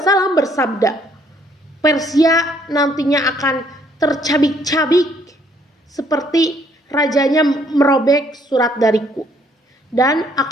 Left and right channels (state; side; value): normal; both; correlation 0.65